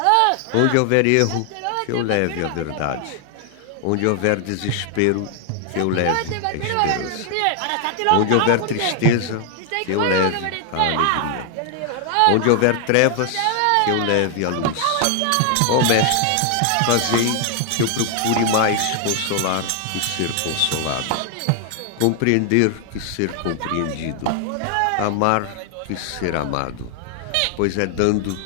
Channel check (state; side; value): different; both; correlation 0.00